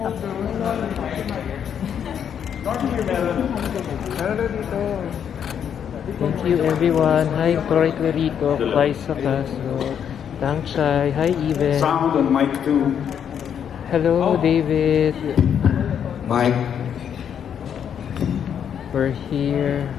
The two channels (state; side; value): quieter; right; 8.4 dB